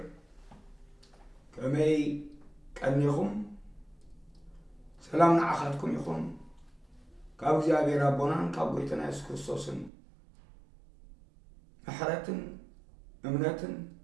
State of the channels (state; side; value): drops out; left; at 9.9 s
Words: كمي ቀኒኹም ሰላም ንዓኻትኩም ይኹን ካብ እግዚአብሔር አቦናን ካብ ጌታና ኢየሱስ ክርስቶስን ምሕረትን እምነትን